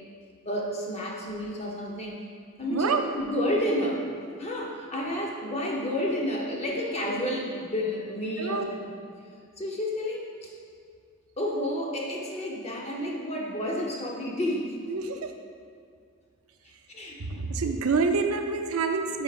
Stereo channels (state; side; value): normal; both; correlation 0.23